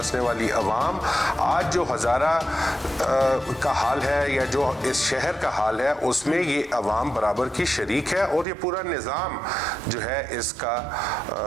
والی عوام, آج جو ہزارہ کا حال ہے یا جو اس شہر کا حال ہے اس میں یہ عوام برابر کی شریک ہے, اور یہ پورا نظام جو ہے اس کا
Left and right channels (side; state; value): left; drops out; at 8.5 s